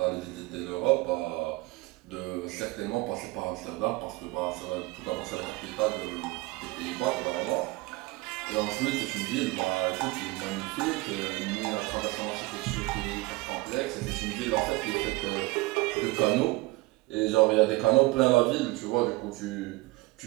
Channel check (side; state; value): left; quieter; 22.2 dB